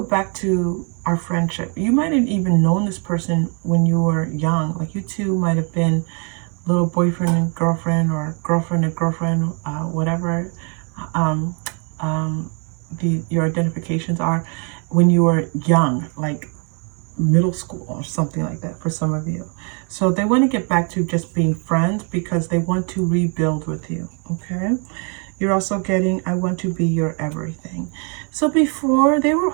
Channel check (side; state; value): left; quieter; 36.8 dB